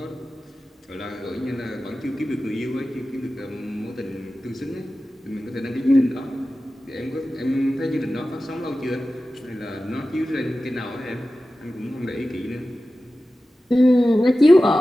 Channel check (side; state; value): both; normal; correlation 0.95